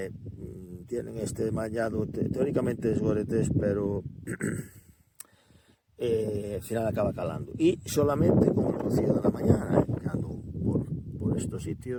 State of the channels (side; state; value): both; identical; correlation 1.00